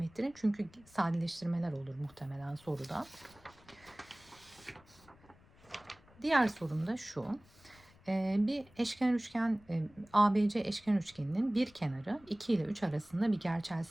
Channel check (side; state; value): left; noise; rumble, 27 dB below the sound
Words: ettirin. Çünkü sadeleştirmeler olur muhtemelen soruda. Diğer sorum da şu. Bir eşkenar üçgen, ABC eşkenar üçgeninin bir kenarı 2 ile 3 arasında bir gerçel